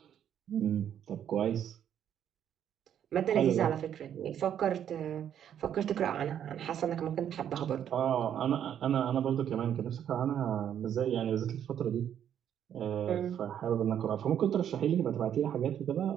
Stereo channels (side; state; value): left; quieter; 9.6 dB